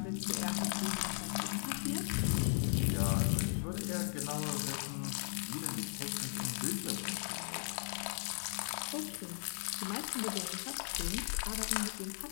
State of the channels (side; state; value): right; silent; digital silence